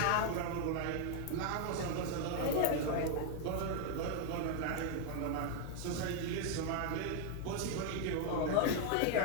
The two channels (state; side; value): different; both; correlation 0.01